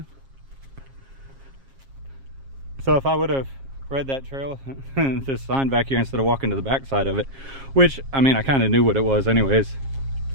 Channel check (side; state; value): left; late; 7.4 ms